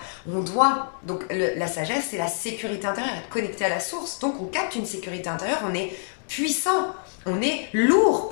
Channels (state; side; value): silent; right; digital silence